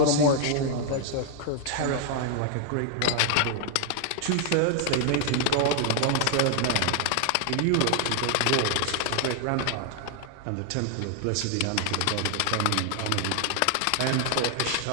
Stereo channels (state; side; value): different; both; correlation 0.00